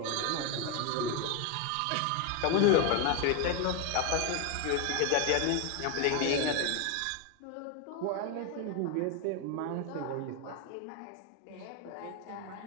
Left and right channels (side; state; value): both; different; correlation 0.02